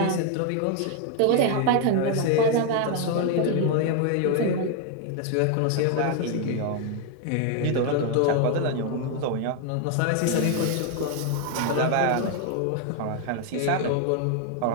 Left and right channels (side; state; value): both; different; correlation 0.00